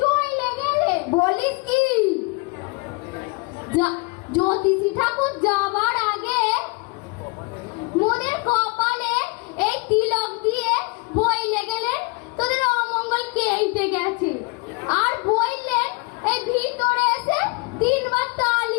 চলে গেলেন। বলিস কি? জ্যোতিষী ঠাকুর যাবার আগে মোদের কপালে এই তিলক দিয়ে বইলে গেলেন তোদের অমঙ্গল কেটে গেছে, আর বললেন এই ভিতরে এসে 3 বার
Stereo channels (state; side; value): quieter; right; 28.2 dB